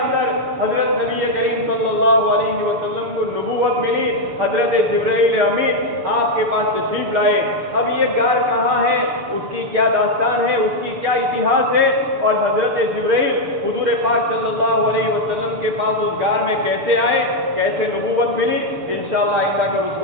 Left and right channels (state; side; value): late; left; 6.9 ms